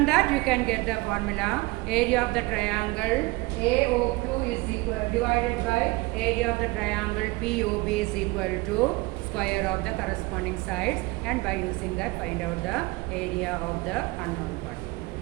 that, you can get the formula. Area of the triangle AOQ is equal divided by area of the triangle POB is equal to square of the corresponding sides, and by using that, find out the area of the unknown part.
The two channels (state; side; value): quieter; left; 23.0 dB